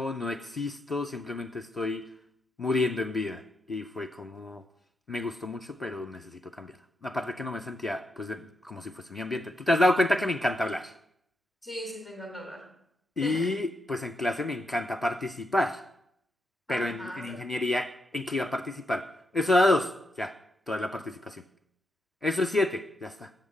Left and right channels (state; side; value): normal; both; correlation 0.82